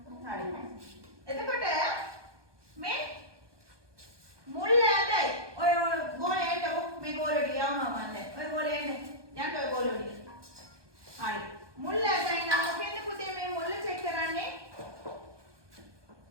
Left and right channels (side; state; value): left; late; 1.2 ms